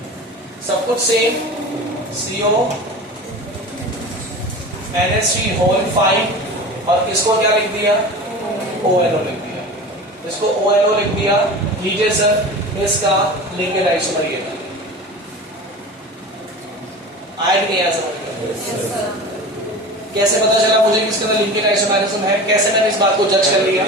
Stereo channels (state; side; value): normal; both; correlation 0.33